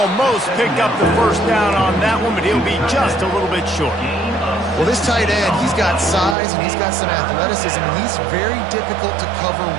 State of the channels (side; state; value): left; drops out; at 6.4 s